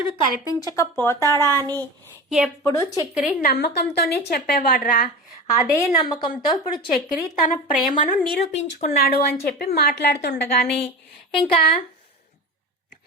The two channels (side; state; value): both; normal; correlation 0.30